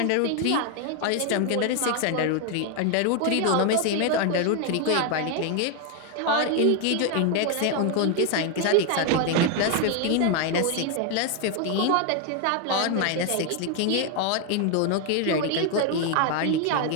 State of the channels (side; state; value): both; different; correlation 0.01